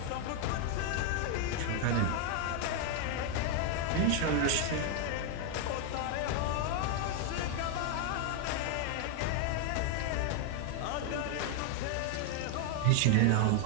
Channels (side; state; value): both; different; correlation 0.00